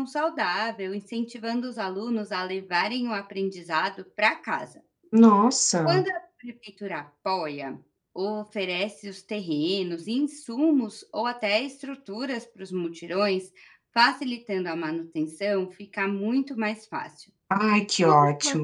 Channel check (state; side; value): identical; both; correlation 1.00